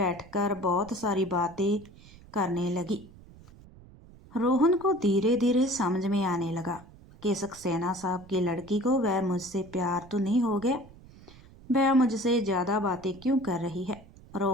बहुत सारी बातें करने लगी। रोहन को धीरे धीरे समझ में आने लगा कि सक्सेना साहब की लड़की को वह मुझसे प्यार तो नहीं हो गया, वह मुझसे ज़्यादा बातें क्यों कर रही है।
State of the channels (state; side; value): noise; right; rumble, 22 dB below the sound